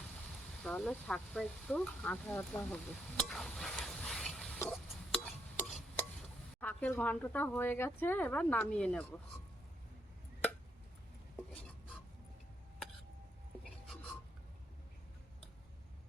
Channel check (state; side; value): normal; both; correlation 0.76